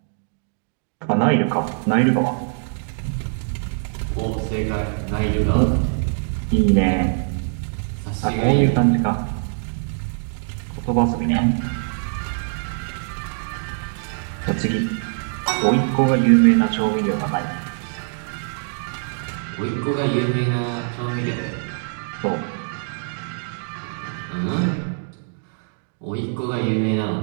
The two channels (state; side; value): silent; left; digital silence